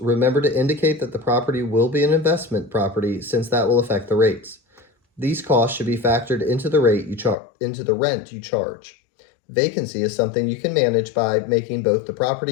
to indicate that the property will be an investment property since that will affect the rates. These costs should be factored into the rent you charge. Vacancy is something you can manage by making both the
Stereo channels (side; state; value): right; drops out; at 7.4 s